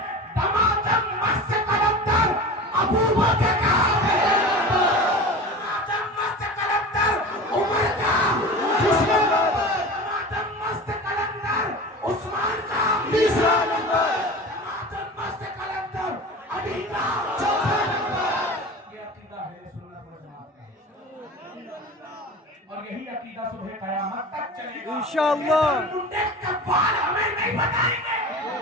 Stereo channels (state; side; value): normal; both; correlation 0.33